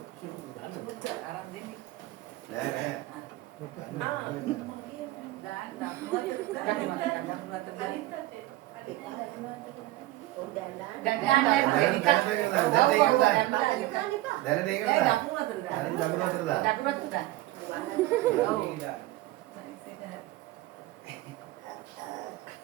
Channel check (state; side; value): quieter; left; 17.3 dB